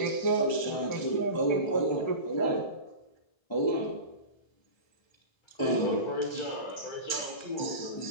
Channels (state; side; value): late; right; 1.2 ms